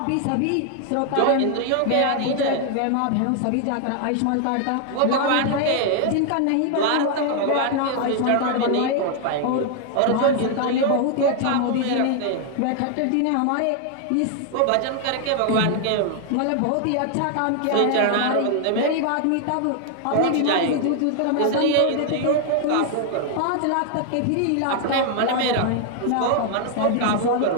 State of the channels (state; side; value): different; both; correlation 0.00